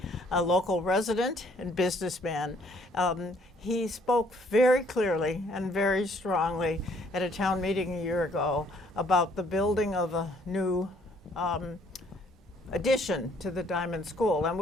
a local resident and businessman. He spoke very clearly and very strongly at a town meeting a year ago about the building of a new addition to the Diamond School, and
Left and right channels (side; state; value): both; normal; correlation 0.63